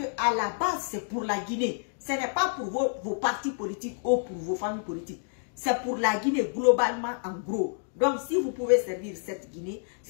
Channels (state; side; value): silent; right; digital silence